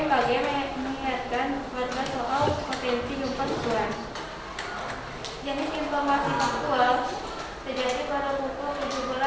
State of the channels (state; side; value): identical; both; correlation 1.00